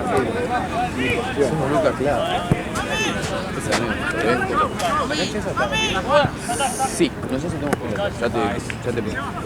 fe. Somos Lucas Claro. Ese amigo, ¿te ves? Sí, no sé si tenemos que... Ya te pido.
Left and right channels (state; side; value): identical; both; correlation 1.00